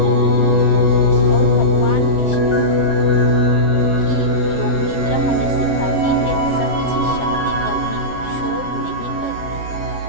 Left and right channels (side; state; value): right; late; 7.4 ms